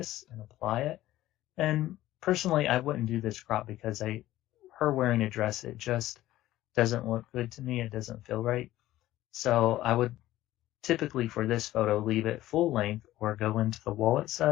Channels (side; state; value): right; quieter; 15.2 dB